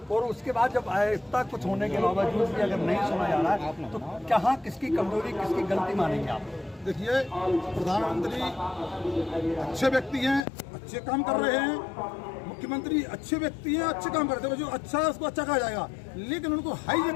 और उसके बाद जब इतना कुछ होने के बावजूद भी अगर नहीं सुना जा रहा है तो कहाँ किसकी कमजोरी किसकी गलती मानेंगे आप? देखिए, प्रधानमंत्री अच्छे व्यक्ति हैं, अच्छे काम कर रहे हैं, मुख्यमंत्री अच्छे व्यक्ति हैं, अच्छे काम करते हैं, जो अच्छा है उसको अच्छा कहा जाएगा, लेकिन उनको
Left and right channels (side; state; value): right; drops out; at 10.5 s